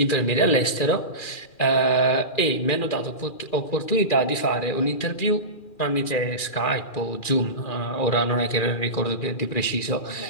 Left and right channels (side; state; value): right; late; 2.4 ms